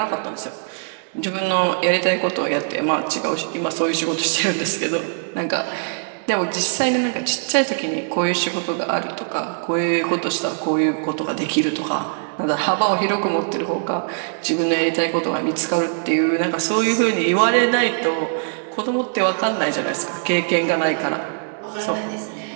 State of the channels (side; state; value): left; silent; digital silence